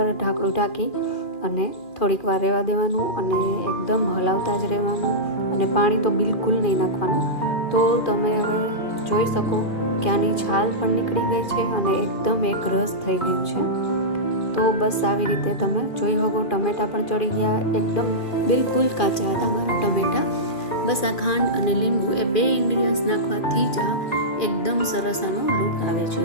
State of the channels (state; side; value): late; right; 2.4 ms